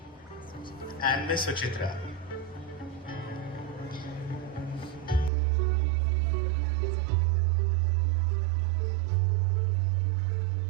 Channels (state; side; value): drops out; left; at 5.3 s